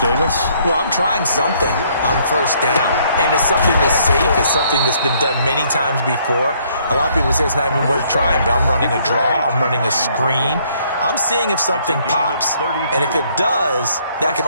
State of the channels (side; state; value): both; inverted; correlation -0.66